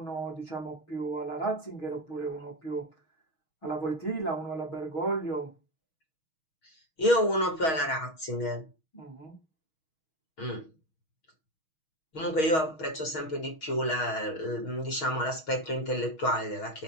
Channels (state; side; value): late; right; 6.3 ms